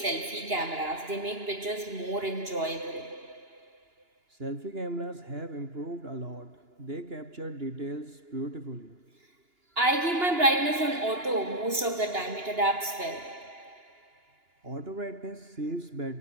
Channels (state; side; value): late; left; 2.9 ms